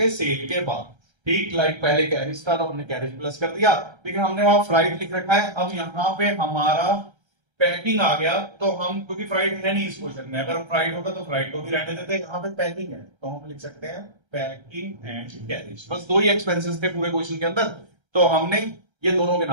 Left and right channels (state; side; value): late; left; 1.3 ms